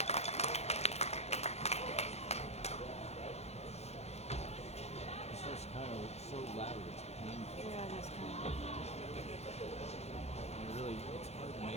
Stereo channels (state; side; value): late; right; 0.31 ms